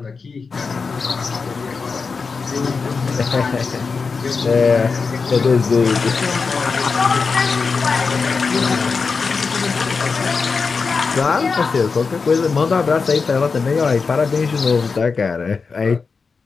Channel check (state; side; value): quieter; right; 4.8 dB